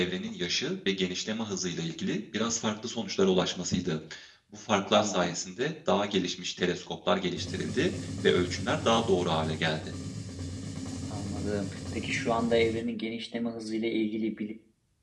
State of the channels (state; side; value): identical; both; correlation 1.00